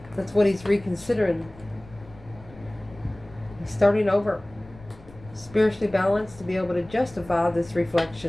That's what he's reconsidering. He's starting over. Spiritually balanced to be able to justify this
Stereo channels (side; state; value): left; noise; rumble, 21 dB below the sound